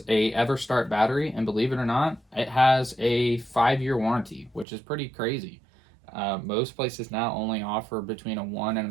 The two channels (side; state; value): left; drops out; at 4.7 s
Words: a EverStart battery, and believe it or not, it has a 5-year warranty, which is pretty crazy. Most places now only offer between a 1